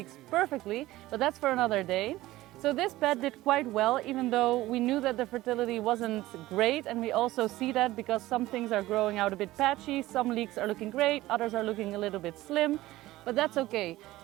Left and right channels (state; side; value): quieter; left; 17.0 dB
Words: perfectly, but that's for another day. So this bed did quite well, even though we knew that the fertility wasn't great, and we also see that because some things are growing out a bit patchy, some leeks are looking great, others are looking a little bit slim, but that's okay.